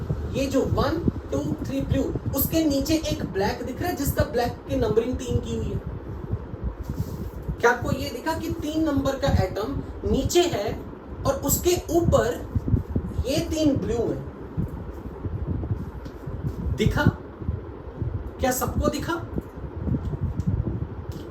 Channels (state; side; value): identical; both; correlation 1.00